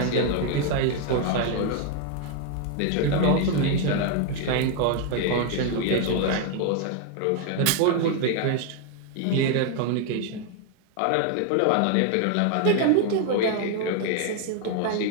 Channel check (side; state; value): both; different; correlation 0.01